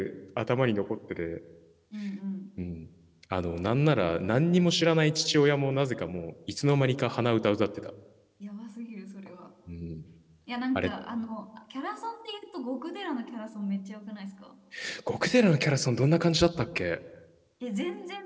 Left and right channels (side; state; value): both; identical; correlation 1.00